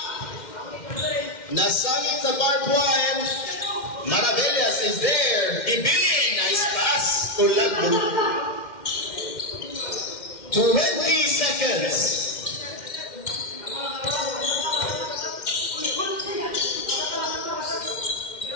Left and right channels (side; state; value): right; late; 2.1 ms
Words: Nasangit sa barbed wire. Maravillas is there. Ibili, nice pass. Tulagbo. 20 seconds.